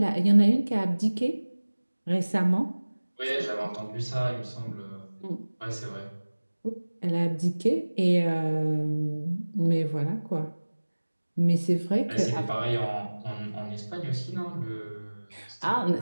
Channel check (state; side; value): inverted; both; correlation -1.00